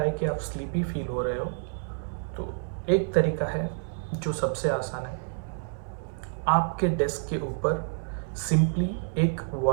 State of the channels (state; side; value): silent; left; 59 dB below the other